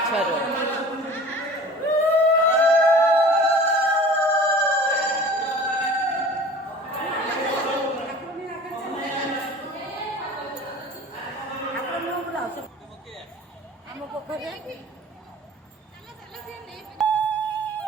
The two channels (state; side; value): normal; both; correlation 0.43